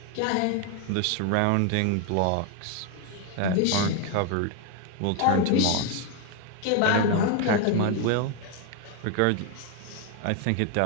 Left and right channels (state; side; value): different; both; correlation 0.01